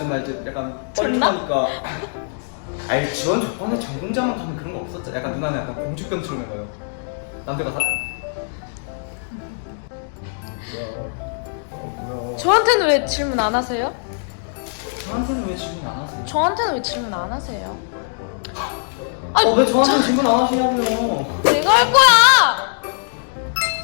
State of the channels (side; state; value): right; silent; digital silence